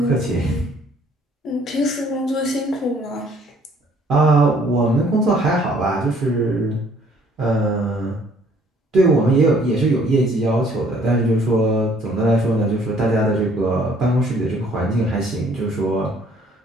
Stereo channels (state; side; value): normal; both; correlation 0.60